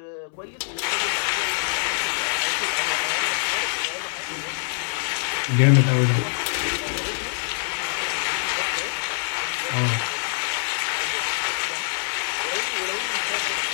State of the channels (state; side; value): silent; right; 62 dB below the other